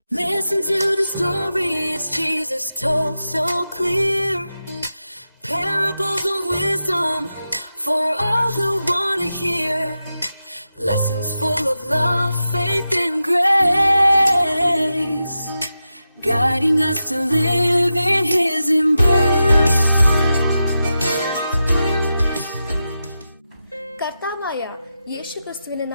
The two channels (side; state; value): both; inverted; correlation -0.90